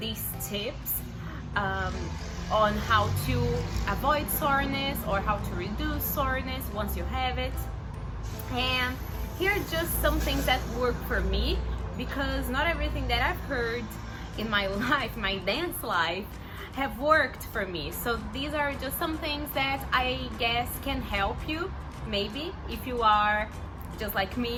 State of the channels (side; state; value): both; identical; correlation 1.00